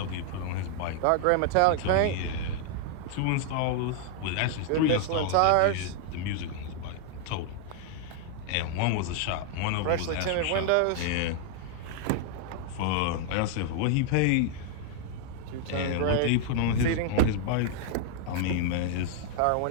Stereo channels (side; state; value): both; different; correlation 0.00